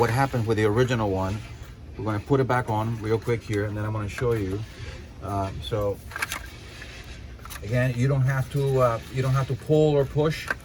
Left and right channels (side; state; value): both; identical; correlation 1.00